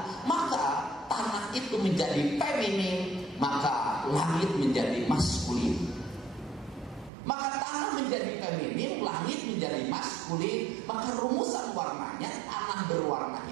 Maka tanah itu menjadi feminin, maka langit menjadi maskulin. Maka tanah menjadi feminin, langit menjadi maskulin. Maka rumusan warnanya, tanah berwarna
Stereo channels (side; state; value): left; drops out; at 7.1 s